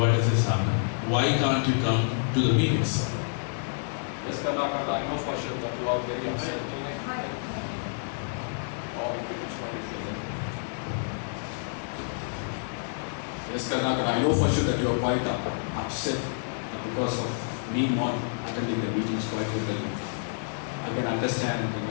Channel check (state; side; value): silent; right; digital silence